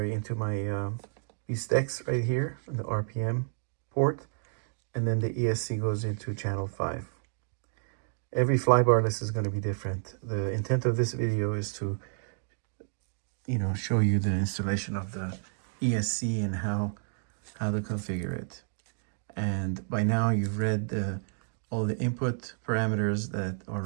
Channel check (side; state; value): left; silent; digital silence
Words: my STEX right here on the RPM port, and then the ESC goes into channel 5. Every flybarless is going to be different. The intent of this video is to, show you the installation of the ESC and how to configure it. And by now you've read all the input parameters that are